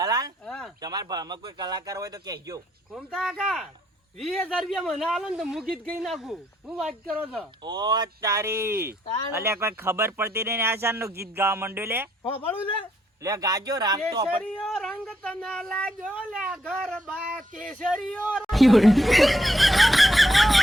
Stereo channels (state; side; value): normal; both; correlation 0.74